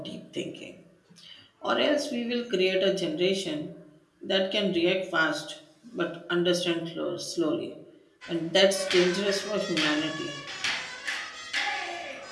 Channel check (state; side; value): identical; both; correlation 1.00